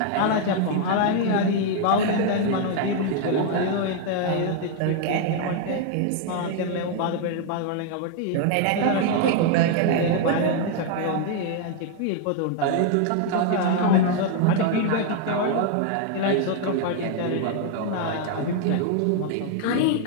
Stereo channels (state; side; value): different; both; correlation 0.00